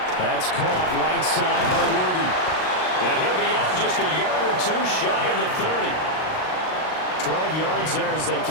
That's caught right side by Worthy. And he'll be out just a yard or 2 shy of the 30. 12 yards there as they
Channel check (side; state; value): right; late; 38 ms